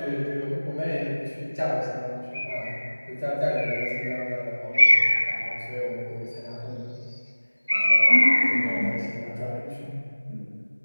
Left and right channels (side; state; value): both; inverted; correlation -1.00